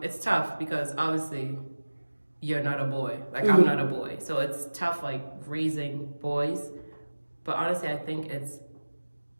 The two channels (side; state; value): both; inverted; correlation -1.00